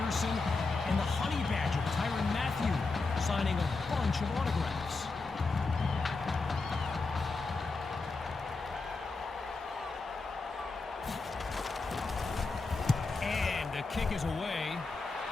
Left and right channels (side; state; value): right; quieter; 3.8 dB